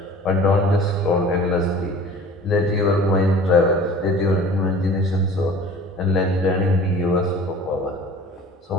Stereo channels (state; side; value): normal; both; correlation 0.44